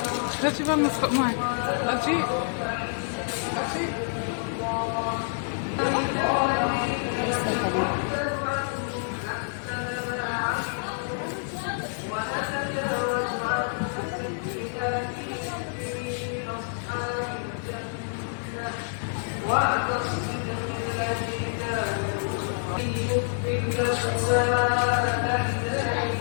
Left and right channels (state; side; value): silent; right; digital silence